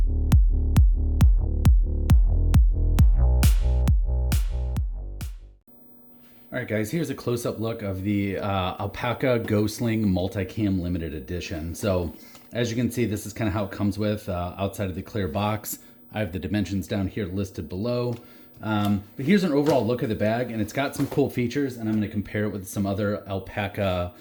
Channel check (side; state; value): both; identical; correlation 1.00